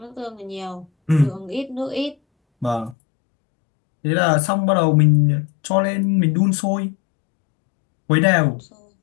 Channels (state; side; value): drops out; right; at 3.0 s